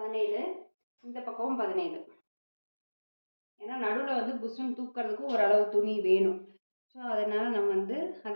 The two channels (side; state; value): both; inverted; correlation -1.00